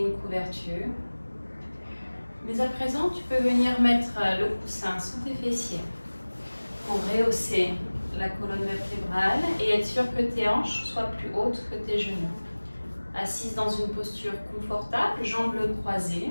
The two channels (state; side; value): inverted; both; correlation -1.00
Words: une couverture. Mais à présent, tu peux venir mettre le coussin sous tes fessiers pour rehausser la colonne vertébrale et être sûr que tes hanches soient plus hautes que tes genoux. Assise dans une posture confortable, jambes croisées,